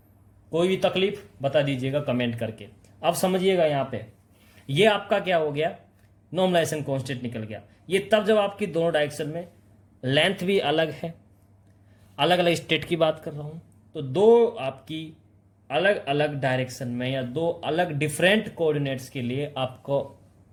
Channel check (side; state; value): both; identical; correlation 1.00